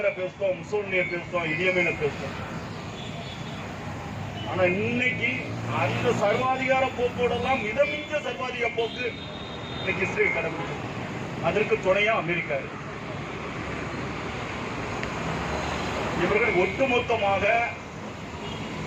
பேசுவோம், முசோலினியை பேசுவோம், இடியமீனை பேசுவோம். ஆனா இன்னைக்கு அந்த சர்வாதிகார போக்கோடெல்லாம் மிதமிஞ்ச சர்வாதிகார போக்கு இன்னைக்கு இஸ்ரேல் கடைபிடிக்கும். அதற்கு துணையா அமெரிக்கா இருக்கு. இவர்கள் ஒட்டுமொத்தமாக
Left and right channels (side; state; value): both; identical; correlation 1.00